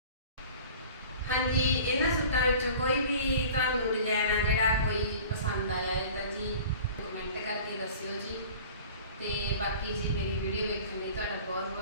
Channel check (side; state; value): both; inverted; correlation -0.43